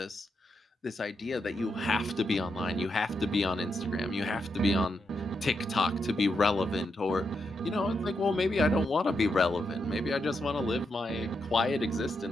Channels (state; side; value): normal; both; correlation 0.83